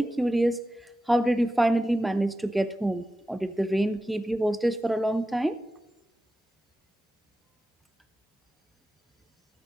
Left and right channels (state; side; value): normal; both; correlation 0.93